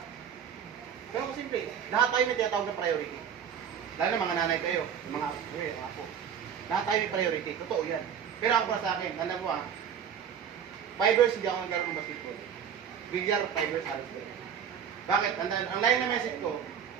Pero kung simple, lahat tayo may tinatawag na priority. Lalo na mga nanay kayo, yung mga apo. Lahat tayo may priority, totoo yan. Pero ako para sa akin, alam mo 5 years hindi ako naglaro ng basketball. Bilyar, 5 years halos ko. Bakit? Ang line na message ko,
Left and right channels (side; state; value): left; quieter; 8.2 dB